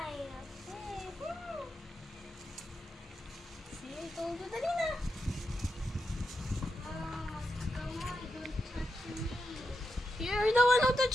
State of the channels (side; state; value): both; normal; correlation 0.87